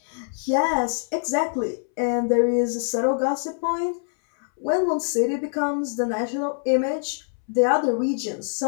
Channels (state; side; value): silent; right; 62 dB below the other